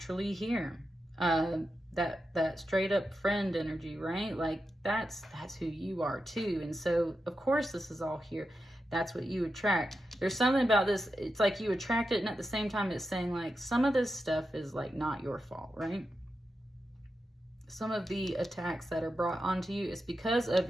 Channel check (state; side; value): normal; both; correlation 0.89